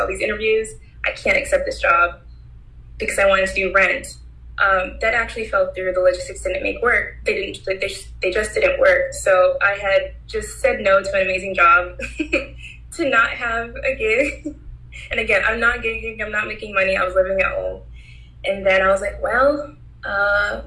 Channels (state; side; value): identical; both; correlation 1.00